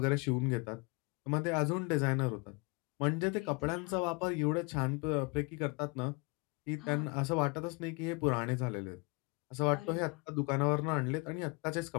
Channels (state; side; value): quieter; right; 30.0 dB